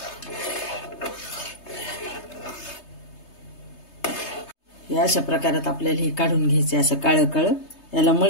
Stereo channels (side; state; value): right; late; 3.3 ms